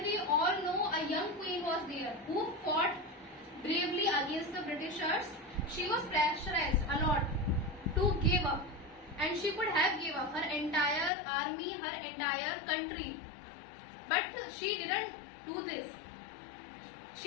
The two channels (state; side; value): drops out; right; at 11.1 s